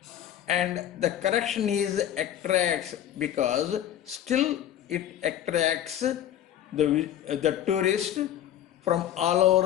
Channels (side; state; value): right; quieter; 11.1 dB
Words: and the correction is attracts, because still it attracts the tourist from all